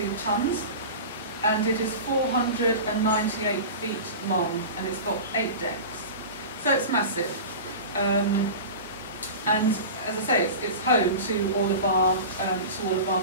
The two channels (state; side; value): inverted; both; correlation -0.31